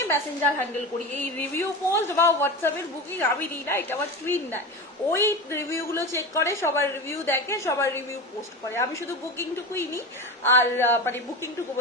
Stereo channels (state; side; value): normal; both; correlation 0.25